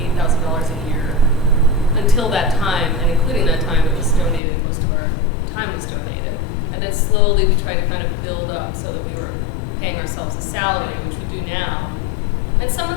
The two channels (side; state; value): right; drops out; at 4.4 s